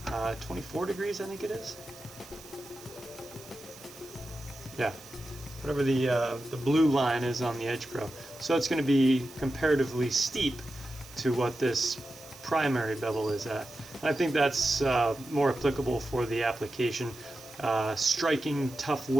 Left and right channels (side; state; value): right; noise; hiss, 19 dB below the sound